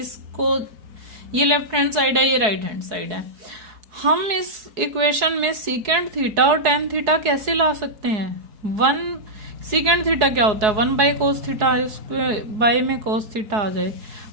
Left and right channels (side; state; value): left; late; 4.7 ms